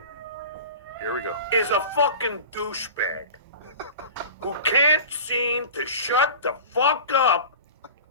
Here we go. Is a fucking douchebag who can't seem to shut the fuck up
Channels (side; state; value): both; inverted; correlation -0.35